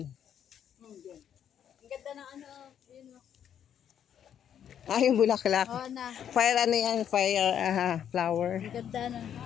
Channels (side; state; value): right; quieter; 9.2 dB